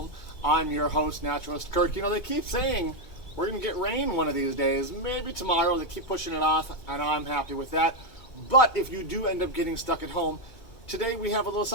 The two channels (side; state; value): right; late; 2.3 ms